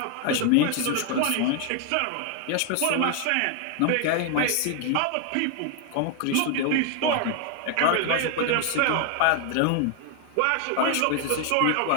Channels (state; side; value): different; both; correlation 0.01